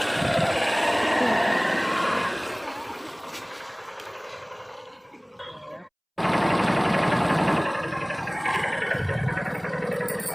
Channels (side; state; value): both; identical; correlation 1.00